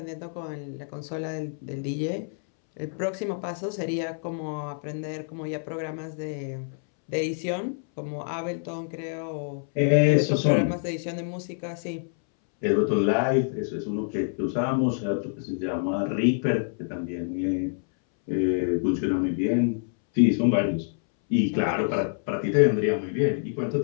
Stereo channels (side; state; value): right; silent; 60 dB below the other